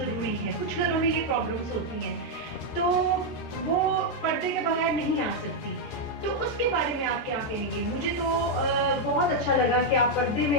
ہے. کچھ گھروں میں یہ پرابلمس ہوتی ہیں تو وہ پردے کے بغیر نہیں آ سکتی. تو اس کے بارے میں آپ کیا کہیں گے؟ مجھے تو بہت اچھا لگا کہ آپ پردے میں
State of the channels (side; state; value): right; late; 14 ms